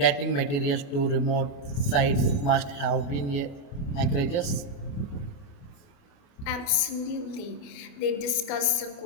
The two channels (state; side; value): late; right; 29 ms